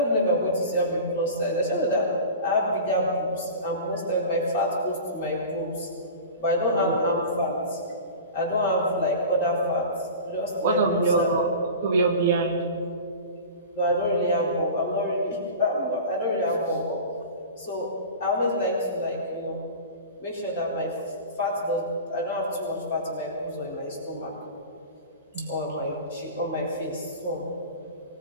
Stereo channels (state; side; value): inverted; both; correlation -0.35